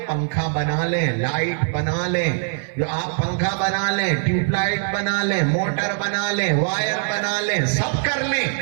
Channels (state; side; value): silent; left; 56 dB below the other